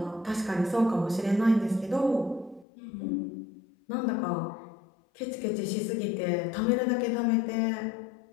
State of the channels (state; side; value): drops out; right; at 2.7 s